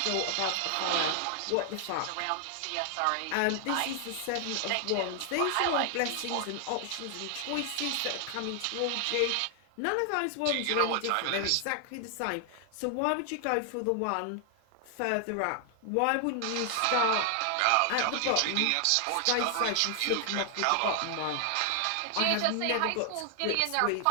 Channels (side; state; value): both; different; correlation 0.00